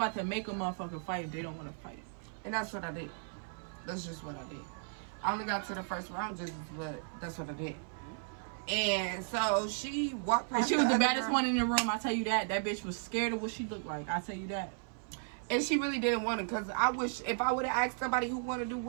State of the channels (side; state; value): left; silent; 54 dB below the other